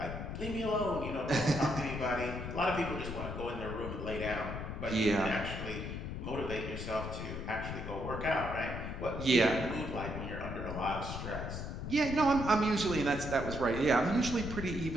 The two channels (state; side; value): noise; left; rumble, 6 dB below the sound